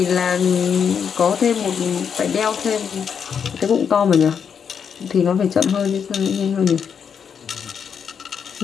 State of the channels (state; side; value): quieter; right; 7.1 dB